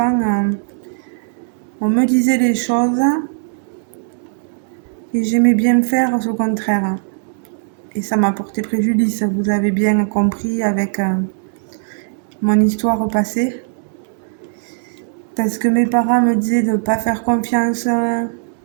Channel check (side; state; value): left; silent; 67 dB below the other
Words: on me disait les choses et j'aimais bien faire ce contraire. Et ça m'a porté préjudice, vous avez bien compris avec mon histoire passée. Parce que mes parents me disaient de ne pas faire confiance